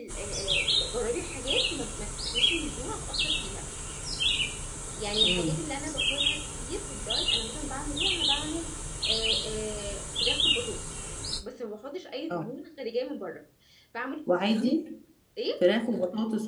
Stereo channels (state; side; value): identical; both; correlation 1.00